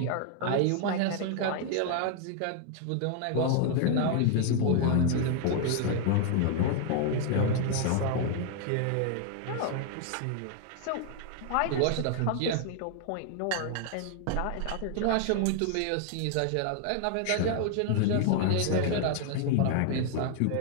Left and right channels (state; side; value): different; both; correlation 0.00